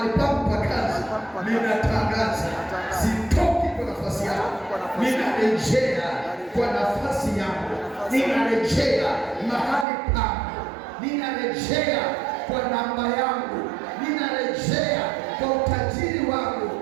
pangu pa kazi, ninatangaza sitoki kwa nafasi yangu. Ninarejea kwa nafasi yangu. Ninarejea mahali pangu. Ninarejea kwa namba yangu. Ninarejea kwa utajiri wangu.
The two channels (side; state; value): left; drops out; at 9.9 s